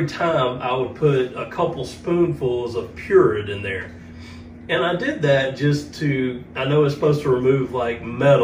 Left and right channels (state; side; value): identical; both; correlation 1.00